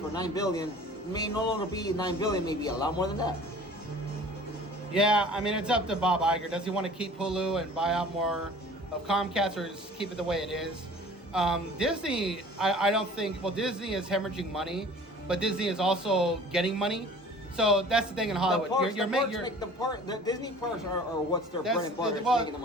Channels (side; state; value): both; normal; correlation 0.46